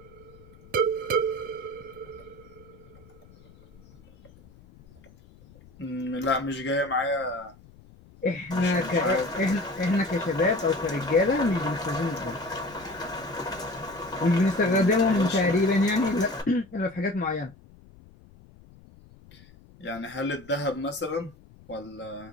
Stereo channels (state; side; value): noise; left; rumble, 24 dB below the sound